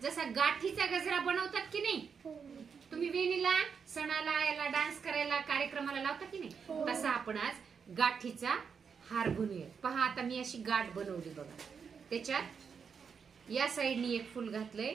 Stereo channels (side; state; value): left; quieter; 6.3 dB